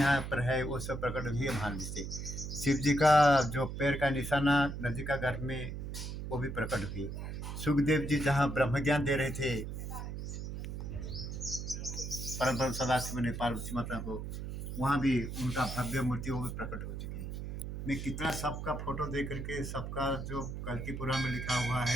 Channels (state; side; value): noise; right; hum, 6 dB below the sound